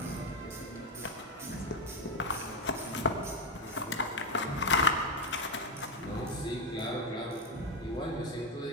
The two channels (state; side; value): normal; both; correlation 0.08